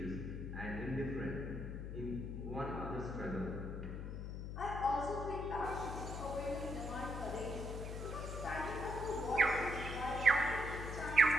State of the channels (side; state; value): left; noise; hum, 5 dB below the sound